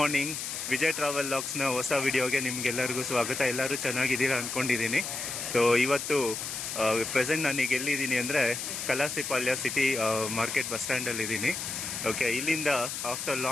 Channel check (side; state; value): left; noise; hiss, 5 dB below the sound